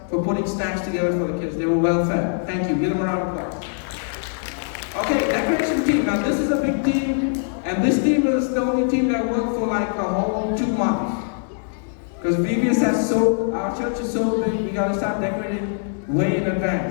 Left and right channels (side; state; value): right; silent; digital silence